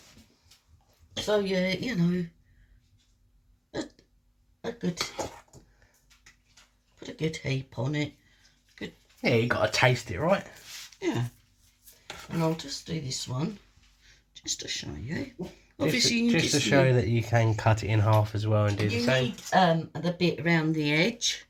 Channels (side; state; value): both; identical; correlation 1.00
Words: So yeah, you know, a good, put a good heap on it. Good. Yeah, you got to taste it, right? Yeah. And I'll just do this one, just to show you. Obviously, just to show that you can cut it in half as well and do the same. You need the bit around the edge.